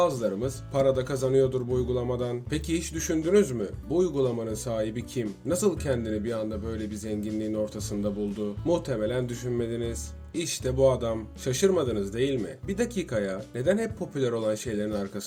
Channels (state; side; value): identical; both; correlation 1.00